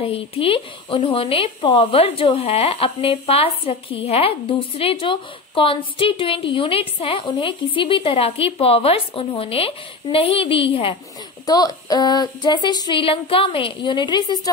थी, उन्होंने पावर जो है अपने पास रखी है। दूसरे जो कॉन्स्टिट्यूएंट यूनिट्स हैं उन्हें किसी भी तरह की पावर्स उन्होंने नहीं दी है। तो जैसे श्रीलंका में यूनिटरी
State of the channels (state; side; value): quieter; right; 3.5 dB